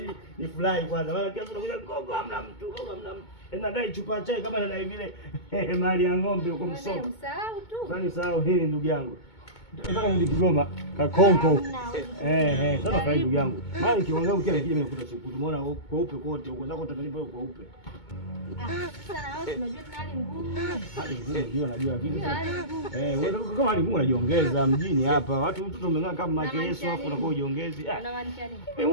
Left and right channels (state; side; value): late; right; 2.2 ms